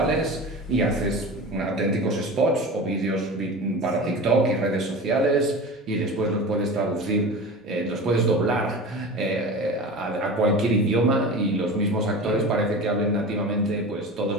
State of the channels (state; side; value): normal; both; correlation 0.32